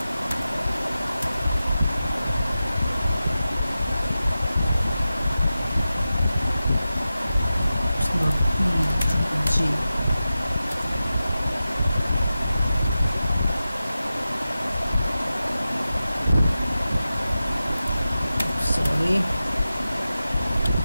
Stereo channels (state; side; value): inverted; both; correlation -0.93